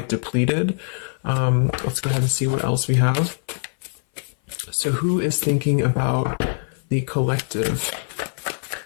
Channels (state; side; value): silent; right; 58 dB below the other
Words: depleted. Let's go ahead and see what else we have. So who is thinking about the collective?